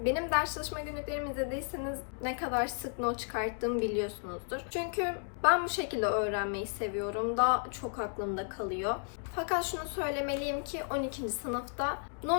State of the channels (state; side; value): silent; right; 55 dB below the other